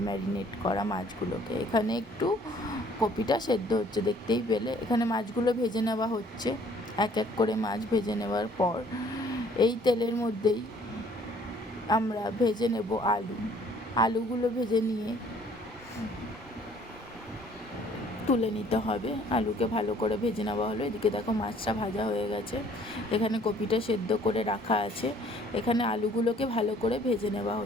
ম্যারিনেট করা মাছগুলোকে। এখানে একটু কপিটা সেদ্ধ হচ্ছে, দেখতেই পেলে। এখানে মাছগুলো ভেজে নেওয়া হচ্ছে। এক এক করে মাছ ভেজে নেওয়ার পর এই তেলের মধ্যেই আমরা ভেজে নেব আলুগুলো ভেজে নিয়ে তুলে নিতে হবে। আলুকে ভালো করে ভেজে নেওয়া হলো। এদিকে দেখো মাছটা ভাজা হয়ে গেছে, এখানে কপিটা সেদ্ধ করে রাখা আছে। এখানে আলুগুলোকে ভালো করে ভেজে নেওয়া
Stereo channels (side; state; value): both; normal; correlation 0.58